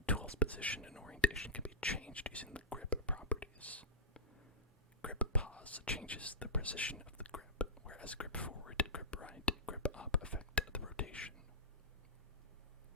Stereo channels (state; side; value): normal; both; correlation -0.14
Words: tool's position and orientation can be changed using the grip properties. Grip pause changes the position of the grip, whereas grip forward, grip right, grip up affect the rotation.